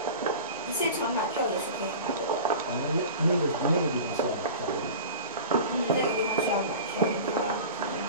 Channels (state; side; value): inverted; both; correlation -0.35